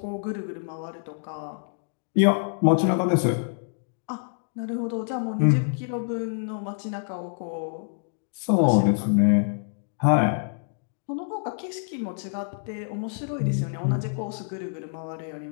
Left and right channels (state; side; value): silent; right; digital silence